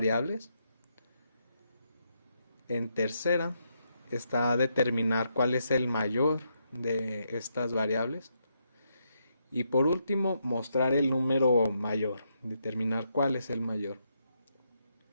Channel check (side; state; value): both; inverted; correlation -0.79